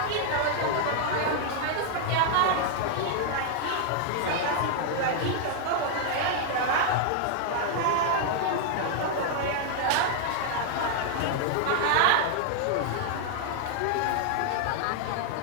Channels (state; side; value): different; both; correlation 0.00